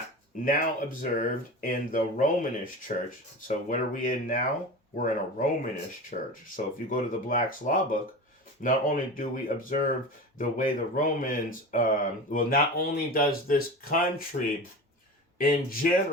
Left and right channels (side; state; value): both; normal; correlation 0.31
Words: now observed in the Romanish church. So what are we in now? We're in a Romanish church. So if you go to the Black's Law Book, not only do we observe the way the Romans, not only does this country in